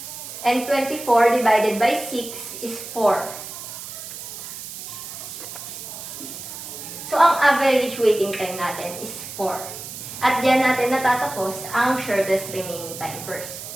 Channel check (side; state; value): right; noise; hiss, 10 dB below the sound